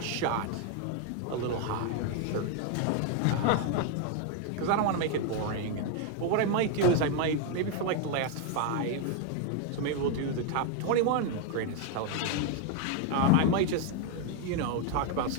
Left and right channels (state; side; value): different; both; correlation 0.01